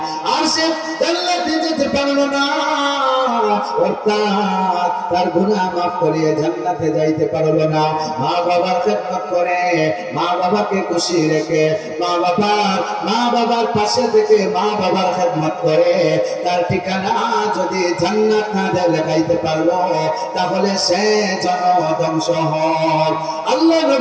আর সে জান্নাতে যেতে পারল না, অর্থাৎ তার গুনাহ মাফ করিয়ে জান্নাতে যাইতে পারল না। মা বাবার খেদমত করে, মা বাবাকে খুশি রেখে, মা বাবার পাশে থেকে মা বাবার খেদমত করে, তার ঠিকানা যদি জান্নাত না দেখাইতে পারলো, তাহলে সে যেন ধ্বংস হয়। আল্লাহ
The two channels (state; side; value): identical; both; correlation 1.00